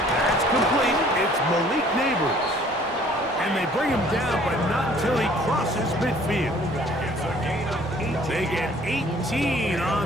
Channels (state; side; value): normal; both; correlation 0.56